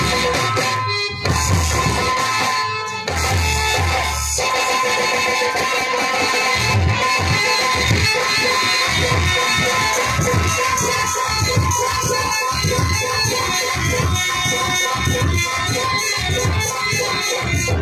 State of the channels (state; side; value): identical; both; correlation 1.00